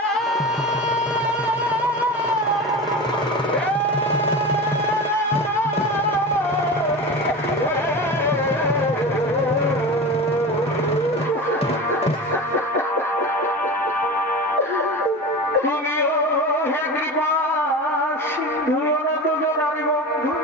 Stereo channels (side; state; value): both; normal; correlation 0.29